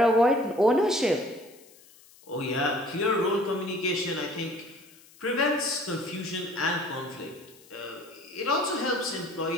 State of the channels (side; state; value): left; noise; hiss, 25 dB below the sound